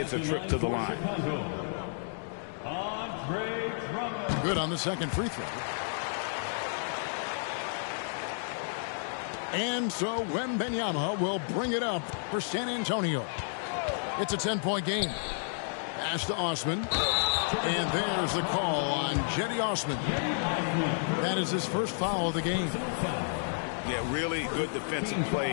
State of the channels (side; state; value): right; silent; digital silence